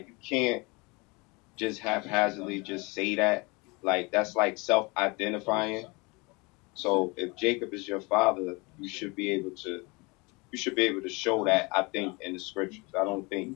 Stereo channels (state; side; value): quieter; right; 27.0 dB